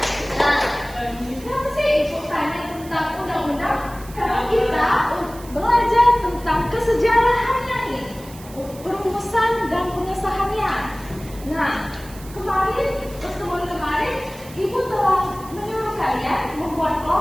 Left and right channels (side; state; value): right; noise; hiss, 19 dB below the sound